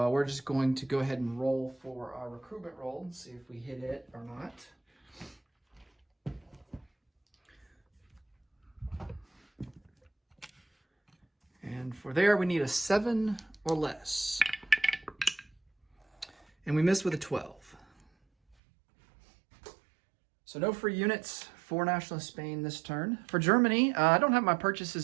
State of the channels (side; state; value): left; drops out; at 18.6 s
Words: we're just going to go ahead and roll for our recruitment roll and see if we hit it or not. And for there, we need a 7 or less. And we missed with a 12. So no free units for Nationalist Spain this turn. For Germany, I don't have my